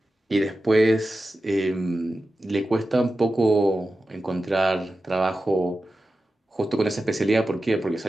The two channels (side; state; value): both; normal; correlation 0.93